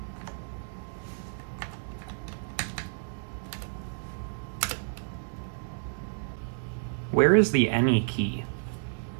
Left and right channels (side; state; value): left; silent; digital silence